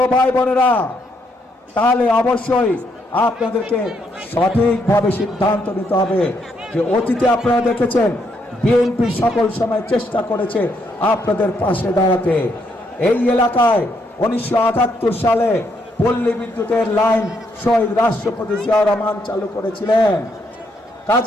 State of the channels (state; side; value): normal; both; correlation 0.75